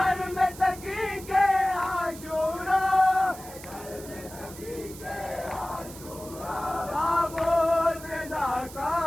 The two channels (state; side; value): noise; right; hiss, 16 dB below the sound